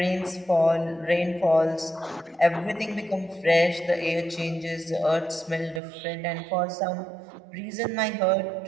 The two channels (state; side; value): drops out; left; at 5.8 s